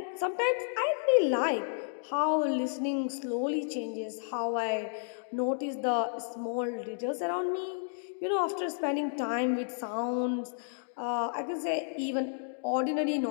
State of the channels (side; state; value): right; silent; digital silence